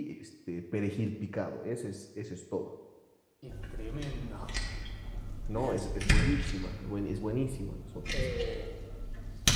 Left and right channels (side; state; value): both; identical; correlation 1.00